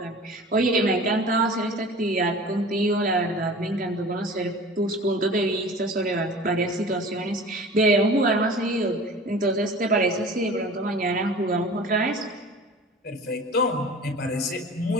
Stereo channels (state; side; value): normal; both; correlation 0.40